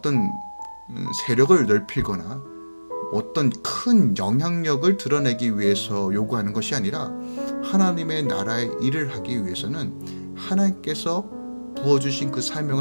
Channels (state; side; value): inverted; both; correlation -1.00